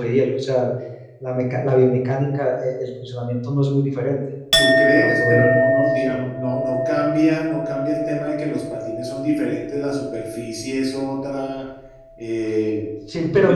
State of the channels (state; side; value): identical; both; correlation 1.00